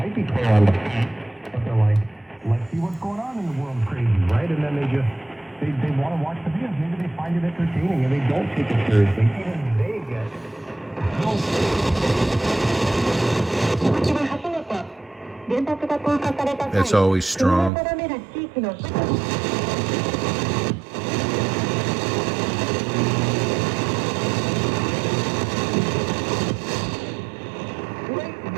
be clear on the fence, but they're like, let's see what's going on in the world crazy, right? And then they want to watch the videos. Maybe they find it entertaining and they don't take it seriously. Even they get That's always strong.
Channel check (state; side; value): drops out; left; at 17.7 s